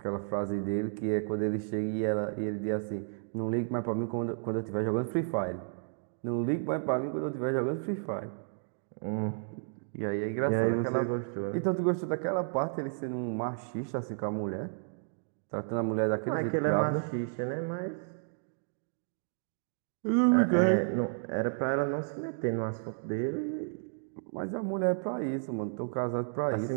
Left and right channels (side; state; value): left; silent; digital silence